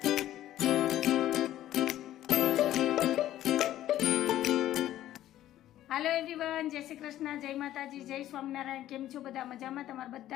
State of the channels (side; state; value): right; quieter; 13.2 dB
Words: હાલો એવરીવન, જય શ્રી કૃષ્ણ, જય માતાજી, જય સ્વામિનારાયણ. કેમ છો બધા? મજામાં? તમારું